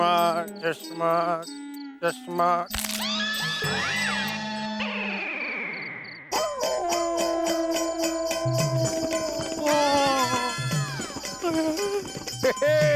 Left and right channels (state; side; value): identical; both; correlation 1.00